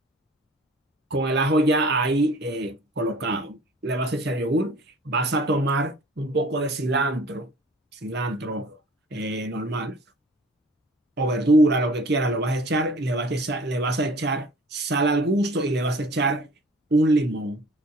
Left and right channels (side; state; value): both; normal; correlation 0.48